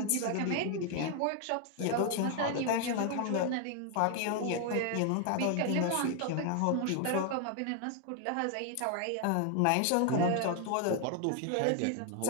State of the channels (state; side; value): different; both; correlation 0.00